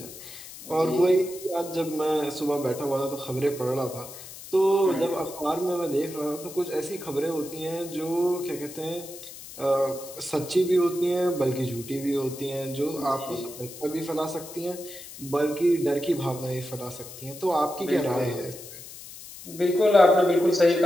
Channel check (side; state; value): left; noise; hiss, 14 dB below the sound